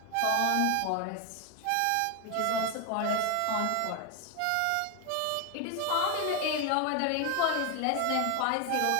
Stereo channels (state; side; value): different; both; correlation 0.01